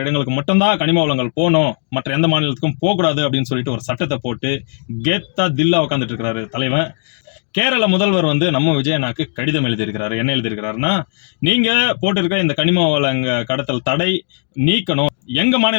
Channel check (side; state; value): right; silent; digital silence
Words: இடங்களுக்கு மட்டும்தான் கனிம வளங்கள் போகணும், மற்ற எந்த மாநிலத்துக்கும் போகக்கூடாது அப்படின்னு சொல்லிட்டு ஒரு சட்டத்தை போட்டு கெத்தா தில்லா உட்காந்துட்டு இருக்கிறாரு தலைவன். கேரள முதல்வர் வந்து நம்ம விஜயனாக்கு கடிதம் எழுதியிருக்கிறாரு. என்ன எழுதியிருக்கிறாருன்னா, நீங்க போட்டிருக்கிற இந்த கனிம வளங்க கடத்தல் தடை நீக்கணும். எங்க